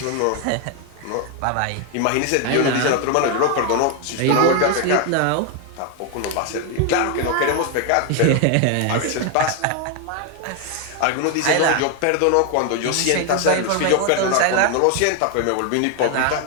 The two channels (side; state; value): both; different; correlation 0.01